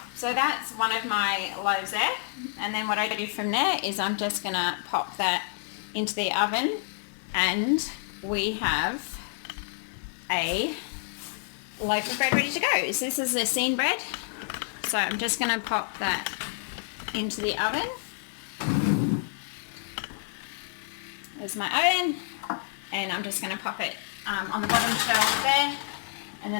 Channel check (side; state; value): right; silent; digital silence